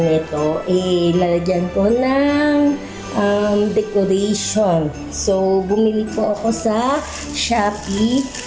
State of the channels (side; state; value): both; identical; correlation 1.00